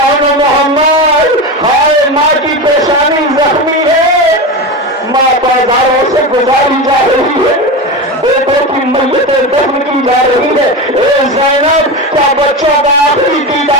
و محمد، ہائے ماں کی پیشانی زخمی ہے، ماں بازاروں سے گزاری جا رہی ہے، بیٹوں کی میتیں دفن کی جا رہی ہے. اے زینب، کیا بچوں کا آخری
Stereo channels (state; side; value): normal; both; correlation 0.21